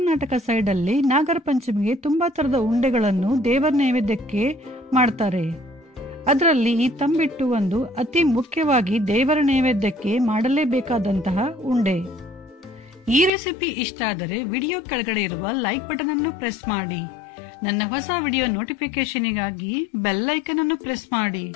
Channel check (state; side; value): drops out; right; at 13.3 s